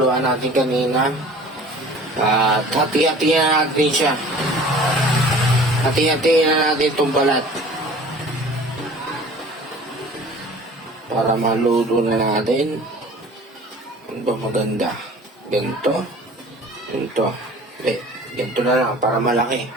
natin kanina. At hati-hatihan natin siya. Hati-hatihan na natin tong balat. Para maluto na natin. Ano ba maganda? Ganito. Ganito. Ganito na lang para malaki.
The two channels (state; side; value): normal; both; correlation 0.46